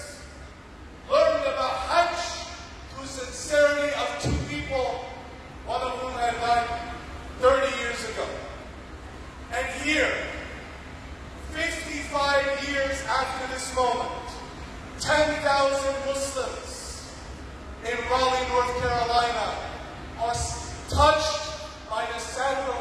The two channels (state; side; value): identical; both; correlation 1.00